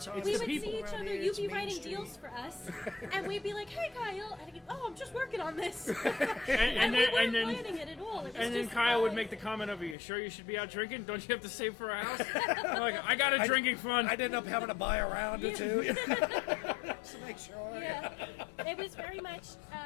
It's We the would people see each around other, here. you'd It's be Main writing Street. deals for us, and we'd be like, hey Kyle, and I'd go, oh, I'm just working on this. and And we then weren't and then planning it at all. It was and then just Kyle would fun. make the comment of, "Are you sure you should be out drinking? Don't you have to save for a house?" I'm like, I got a drinking fund. I'd end up having to buy a round or two. Just to make sure. Yeah, it was very much.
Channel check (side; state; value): right; drops out; at 10.0 s